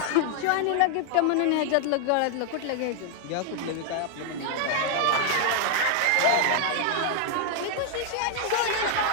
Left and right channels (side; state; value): both; different; correlation 0.00